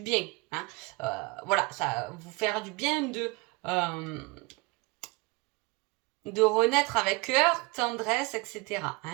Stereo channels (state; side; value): quieter; left; 25.9 dB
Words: Hein. Voilà, ça va vous faire du bien de renaître avec cœur, tendresse, etc.